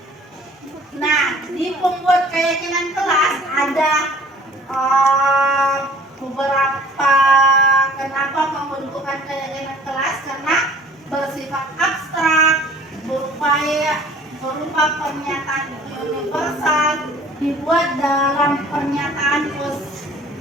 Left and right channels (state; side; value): normal; both; correlation 0.51